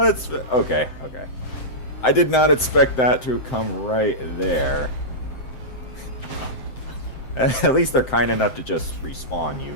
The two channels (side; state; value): right; late; 7.8 ms